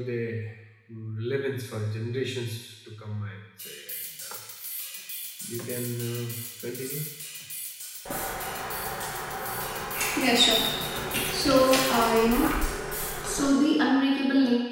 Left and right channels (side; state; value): both; identical; correlation 1.00